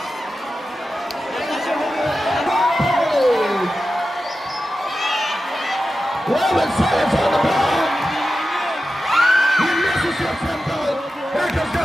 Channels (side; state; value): both; normal; correlation 0.92